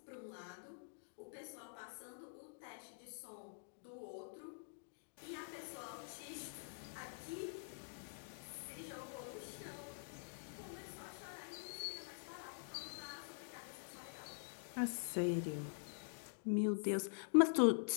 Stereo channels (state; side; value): silent; right; digital silence